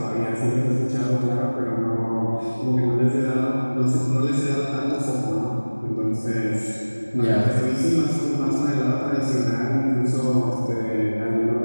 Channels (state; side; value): inverted; both; correlation -1.00